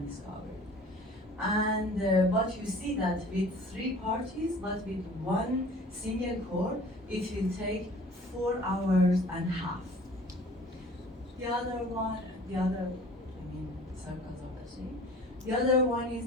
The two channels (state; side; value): normal; both; correlation 0.47